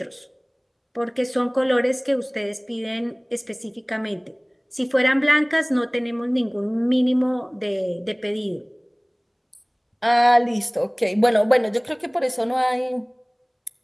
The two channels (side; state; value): both; identical; correlation 1.00